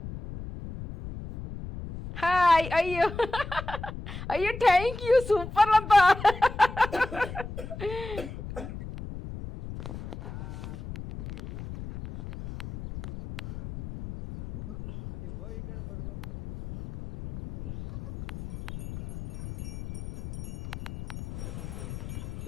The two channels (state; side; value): noise; left; rumble, 10 dB below the sound